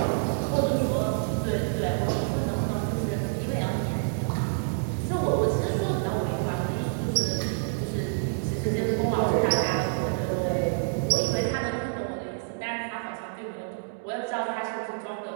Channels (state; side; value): silent; left; digital silence